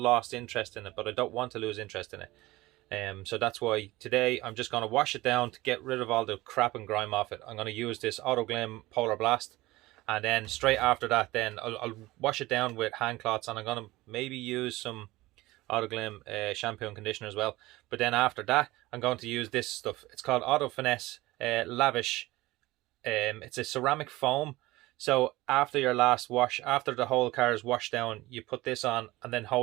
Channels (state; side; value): quieter; left; 19.1 dB